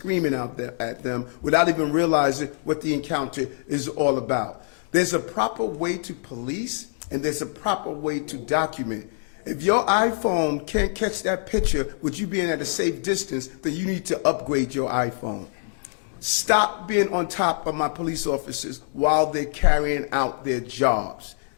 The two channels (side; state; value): right; silent; digital silence